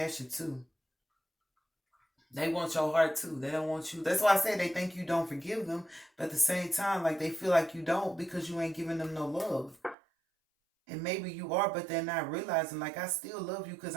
too. They want your heart too. They don't want you. That's why I say they think you don't forgive them, but at the same time, like they feel like you don't because you ain't giving them no love. And maybe you are, but they're not realizing. Like I still love you because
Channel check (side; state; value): left; drops out; at 10.0 s